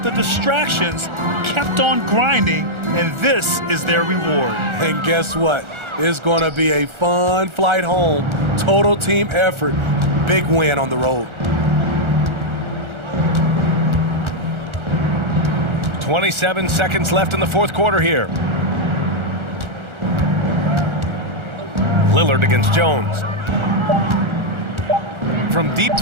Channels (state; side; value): late; left; 1.4 ms